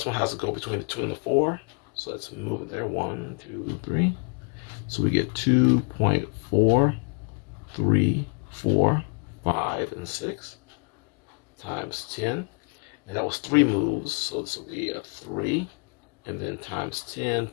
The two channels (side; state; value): right; quieter; 39.1 dB